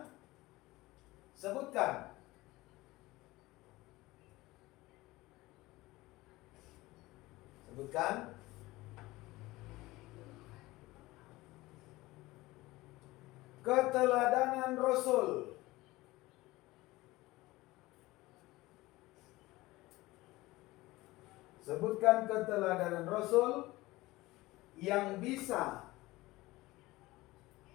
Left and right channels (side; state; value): right; quieter; 19.6 dB